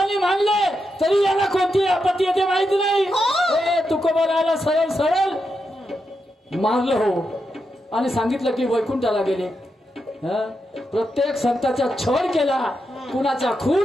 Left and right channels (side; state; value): both; normal; correlation 0.85